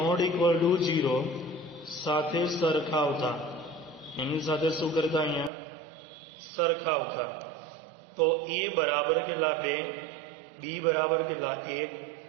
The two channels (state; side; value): drops out; left; at 5.5 s